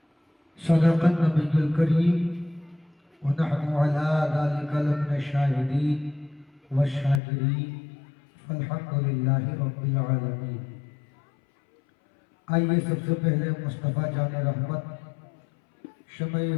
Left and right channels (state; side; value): drops out; right; at 7.2 s